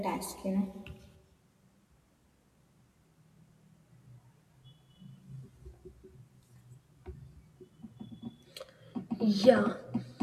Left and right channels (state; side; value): identical; both; correlation 1.00